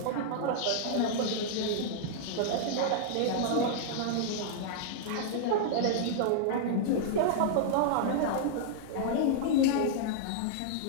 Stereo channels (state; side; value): different; both; correlation -0.01